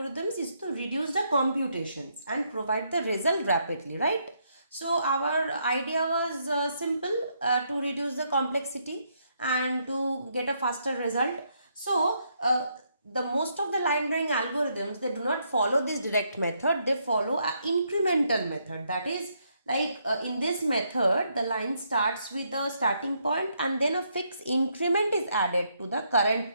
is to reduce the computations and provide the result rapidly, right? So our idea was simple, to reduce the complexity and to get a faster result. So the most of the line drawing algorithms, they do not follow this direct method, they follow an incremental method. That is, like in this method, the line starts with a starting point and then a fixed increment is added to the current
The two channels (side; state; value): both; inverted; correlation -0.75